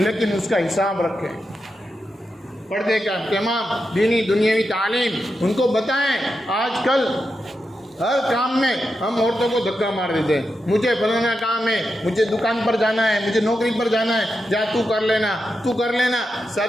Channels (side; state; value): both; normal; correlation 0.87